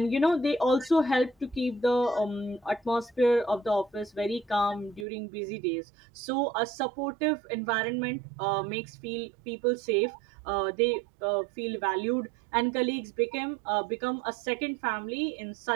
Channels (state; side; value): drops out; left; at 5.1 s